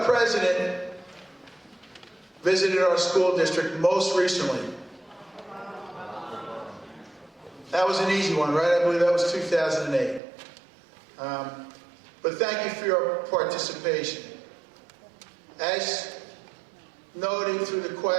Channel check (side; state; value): left; drops out; at 10.2 s